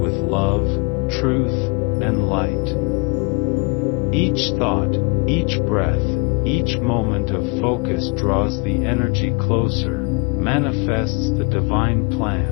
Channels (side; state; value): right; quieter; 30.6 dB